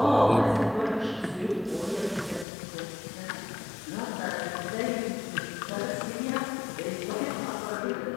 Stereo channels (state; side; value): drops out; right; at 2.5 s